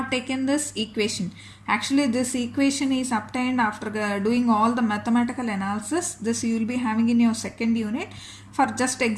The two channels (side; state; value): both; identical; correlation 1.00